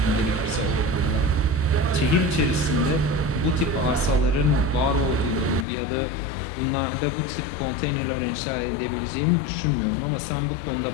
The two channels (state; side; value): drops out; right; at 5.7 s